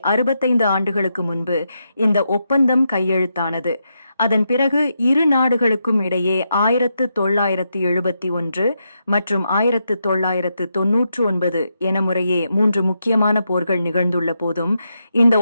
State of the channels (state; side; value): inverted; both; correlation -0.83